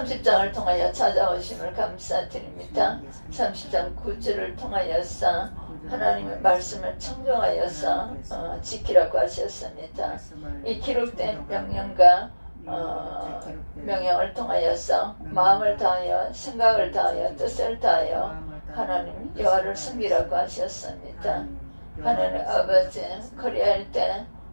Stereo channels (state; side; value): inverted; both; correlation -1.00